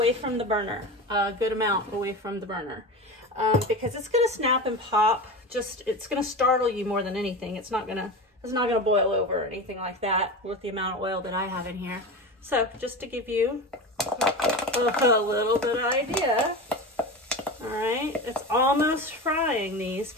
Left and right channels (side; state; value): both; normal; correlation 0.26